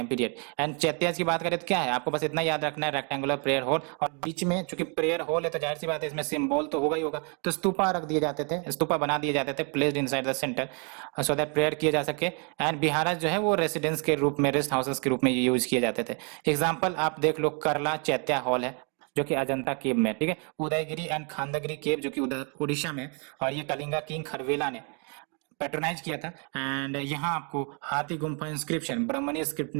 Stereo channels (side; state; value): left; quieter; 36.4 dB